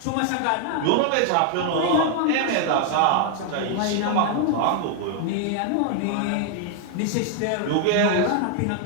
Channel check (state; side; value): different; both; correlation 0.00